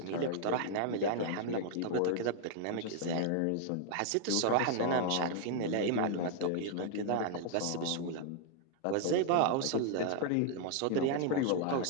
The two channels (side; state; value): both; different; correlation 0.00